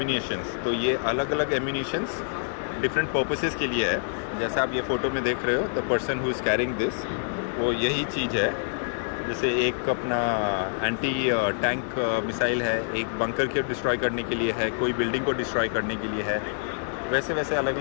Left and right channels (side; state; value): right; silent; digital silence